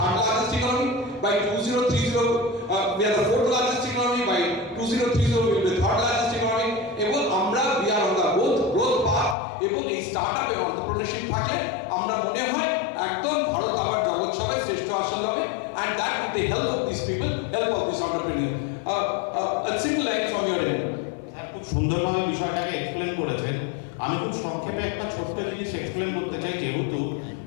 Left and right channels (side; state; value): right; drops out; at 9.3 s